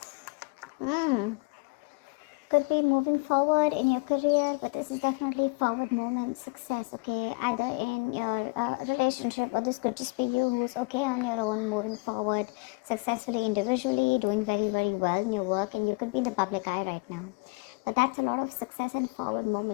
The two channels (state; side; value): quieter; right; 30.4 dB